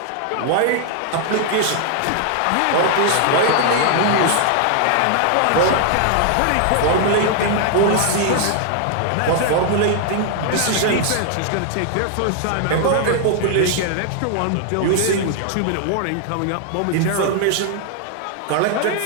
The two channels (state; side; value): different; both; correlation 0.00